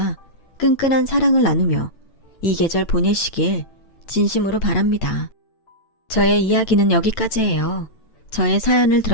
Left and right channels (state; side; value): late; right; 8.9 ms